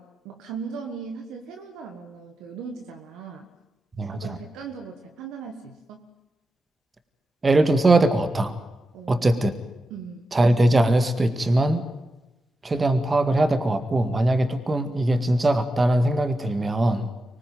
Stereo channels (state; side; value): normal; both; correlation 0.90